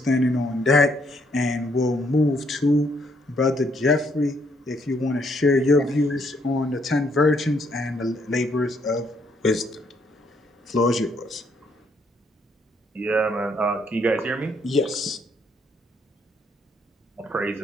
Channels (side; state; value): both; normal; correlation 0.71